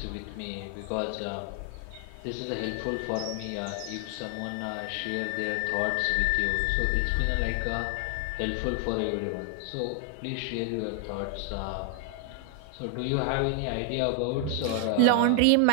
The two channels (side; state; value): both; different; correlation 0.00